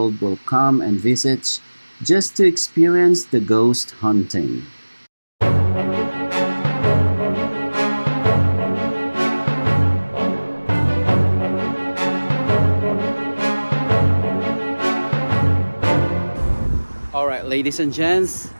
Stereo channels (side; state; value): both; inverted; correlation -1.00